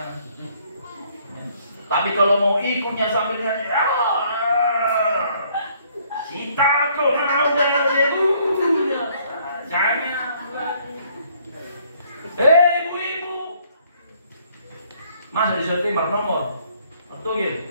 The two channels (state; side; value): inverted; both; correlation -0.64